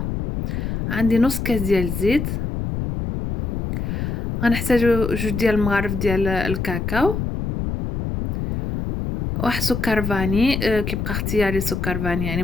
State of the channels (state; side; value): noise; left; rumble, 3 dB below the sound